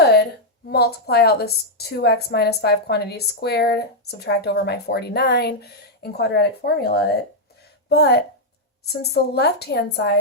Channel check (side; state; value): both; normal; correlation -0.03